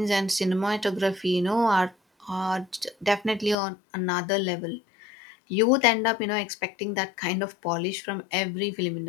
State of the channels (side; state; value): right; drops out; at 3.6 s